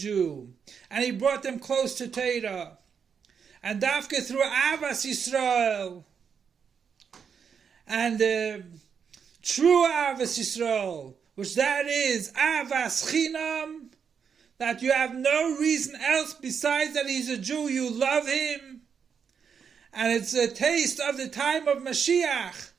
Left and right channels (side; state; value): left; quieter; 6.7 dB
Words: And he brought them close to Torah. And dafka through Avas Yisrael. And true Avas Yisrael, which that is Avas Chinam, that you have no reason else besides that he's a Jew, you love him. And it's a taste of the time of Mashiach,